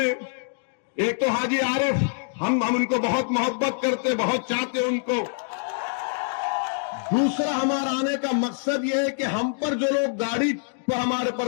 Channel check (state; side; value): silent; right; digital silence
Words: एक तो हाजी आरिफ, हम उनको बहुत मोहब्बत करते, बहुत चाहते उनको। दूसरा हमारा आने का मकसद यह है कि हम पर जो लोग गाड़ी पर हमारे